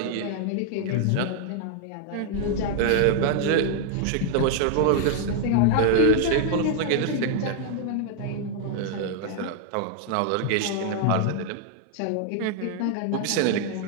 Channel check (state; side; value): different; both; correlation 0.00